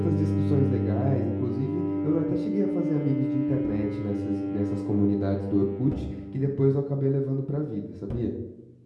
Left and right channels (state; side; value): identical; both; correlation 1.00